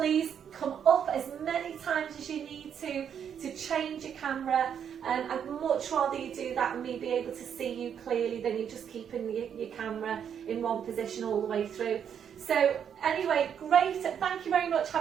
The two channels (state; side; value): quieter; left; 8.2 dB